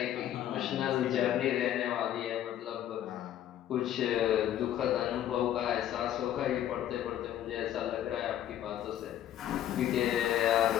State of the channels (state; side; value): quieter; right; 11.5 dB